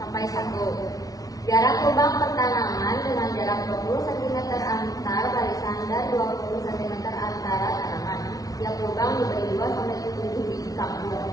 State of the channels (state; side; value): late; right; 0.18 ms